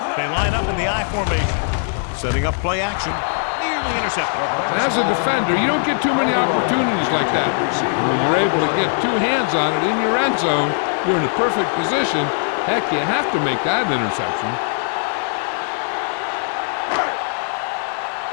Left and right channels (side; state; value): right; silent; 59 dB below the other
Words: They line up in the I formation, setting up play action. Nearly intercepted. As a defender, you don't get too many opportunities like that. When you're able to get 2 hands on it in your end zone, you're in a perfect position. Heck, you have to make that interception.